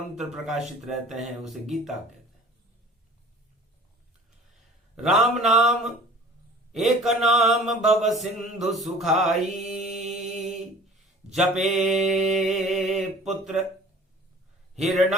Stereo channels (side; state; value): both; normal; correlation 0.46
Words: प्रकाशित रहते हैं, उसे गीता कहते हैं। राम नाम एक नाम भव सिंधु सुखाई, जपे पुत्र